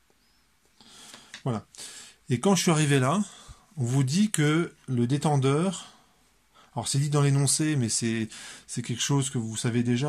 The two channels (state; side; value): identical; both; correlation 1.00